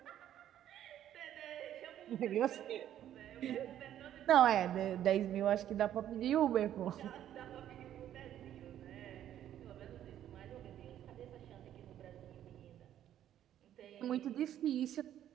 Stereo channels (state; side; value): quieter; left; 11.2 dB